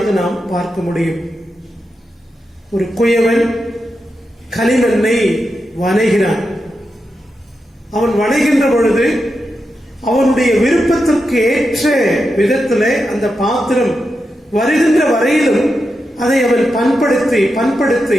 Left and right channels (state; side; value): normal; both; correlation 0.88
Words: நாம் பார்க்க முடியும். ஒரு குயவன் களிமண்ணை வணைகிறான். அவன் வணைகின்ற பொழுது அவனுடைய விருப்பத்திற்கு ஏற்ற விதத்திலே அந்த பாத்திரம் வருகின்ற வரையிலும் அதை அவன்